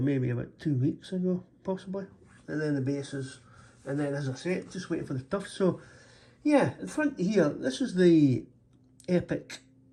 about 2 weeks ago, possibly. And then the bases, and then as I say, just waiting for the tufts. So yeah, in front here, this is the epic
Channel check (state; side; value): identical; both; correlation 1.00